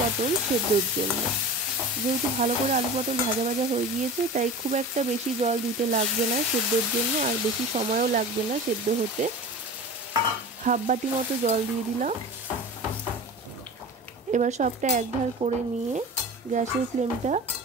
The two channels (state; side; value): normal; both; correlation 0.34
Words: সেদ্ধর জন্য। যেহেতু ভালো করে আলু পটল ভাজা ভাজা হয়ে গিয়েছে তাই খুব একটা বেশি জল দিতে লাগবে না সেদ্ধর জন্য, আর বেশি সময়ও লাগবে না সেদ্ধ হতে। 1/2 বাটি মতো জল দিয়ে দিলাম। এবার সবটা একধার করে নিয়ে গ্যাসের ফ্লেমটা